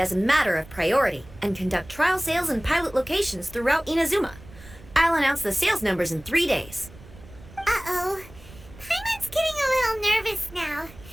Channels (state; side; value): noise; right; rumble, 20 dB below the sound